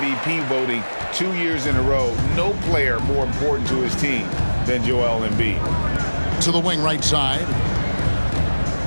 voting 2 years in a row, no player more important to his team than Joel Embiid. To the wing right side.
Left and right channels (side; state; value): both; inverted; correlation -1.00